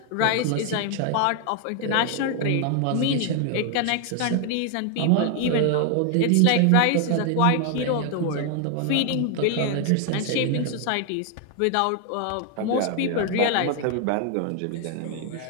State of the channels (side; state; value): both; different; correlation 0.00